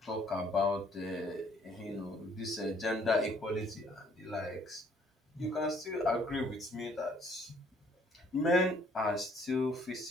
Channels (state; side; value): normal; both; correlation 0.62